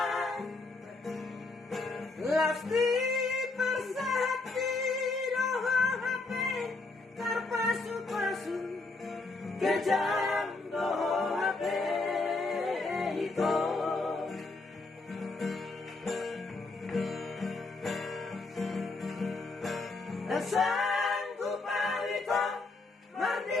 lasti persahati HP terpasu-pasu kejam doho HP itu sanggup itu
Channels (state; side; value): quieter; right; 3.5 dB